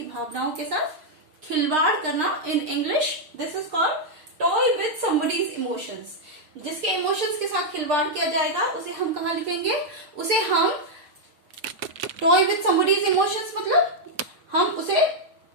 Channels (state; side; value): late; left; 6.6 ms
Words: भावनाओं के साथ खिलवाड़ करना in English. This is called toy with somebody's emotions. जिसके इमोशंस के साथ खिलवाड़ किया जाएगा उसे हम कहाँ लिखेंगे? उसे हम टॉय विथ समबडीज इमोशंस, मतलब हम उसे